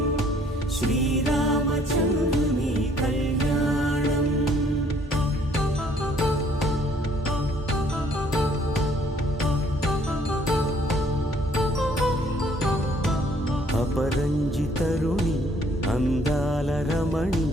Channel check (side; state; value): both; normal; correlation 0.62